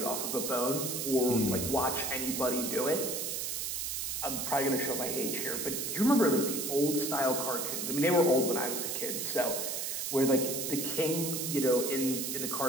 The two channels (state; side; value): noise; right; hiss, 2 dB below the sound